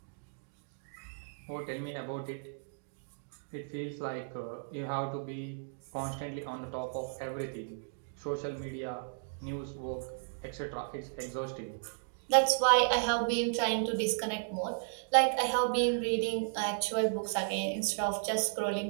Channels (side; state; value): left; silent; digital silence